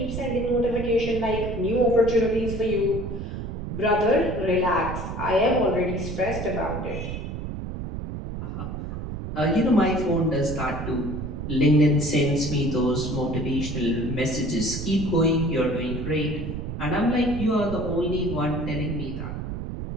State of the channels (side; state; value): right; noise; rumble, 6 dB below the sound